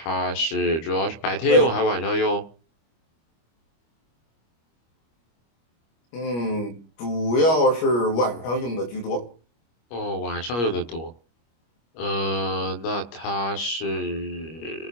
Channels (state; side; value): late; right; 25 ms